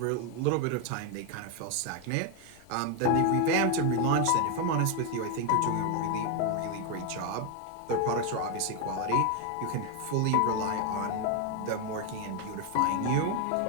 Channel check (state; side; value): different; both; correlation 0.01